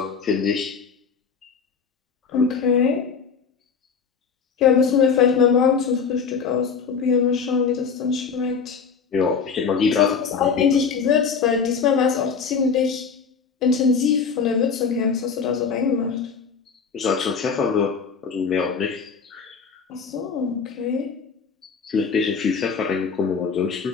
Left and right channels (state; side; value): quieter; right; 5.9 dB